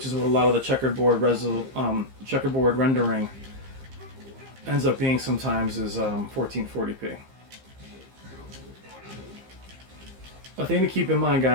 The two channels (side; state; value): left; late; 15 ms